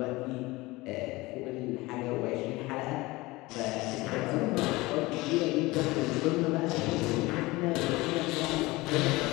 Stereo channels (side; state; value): right; quieter; 21.3 dB